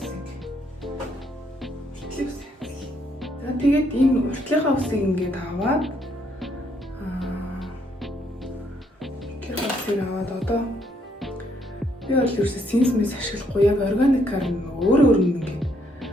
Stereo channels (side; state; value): both; normal; correlation 0.71